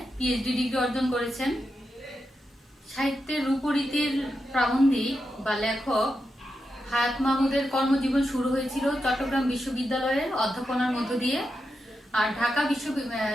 পিএইচডি ডিগ্রি অর্জন করেছেন। সাহিত্যের রূপরীতির প্রাবন্ধিক বা লেখক হায়াত মাহমুদের কর্মজীবন শুরু হয়েছিল চট্টগ্রাম বিশ্ববিদ্যালয়ের অধ্যাপনার মধ্য দিয়ে, আর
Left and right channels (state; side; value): normal; both; correlation 0.87